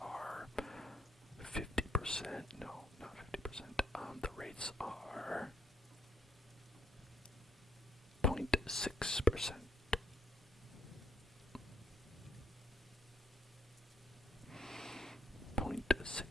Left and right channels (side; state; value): both; normal; correlation 0.69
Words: 50%, no, not 50%, the rates are 0.6%.